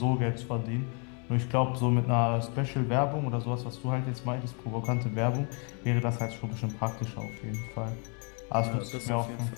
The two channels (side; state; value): right; quieter; 37.5 dB